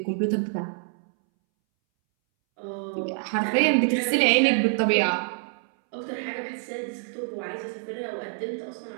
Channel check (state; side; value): silent; left; 61 dB below the other